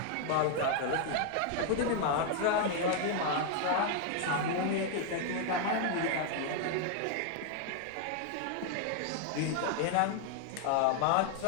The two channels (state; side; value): different; both; correlation 0.00